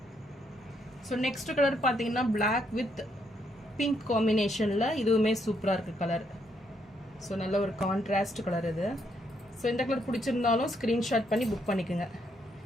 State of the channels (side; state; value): both; normal; correlation 0.74